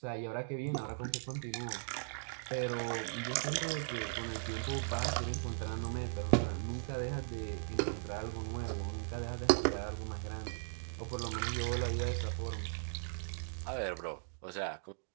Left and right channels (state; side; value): silent; left; digital silence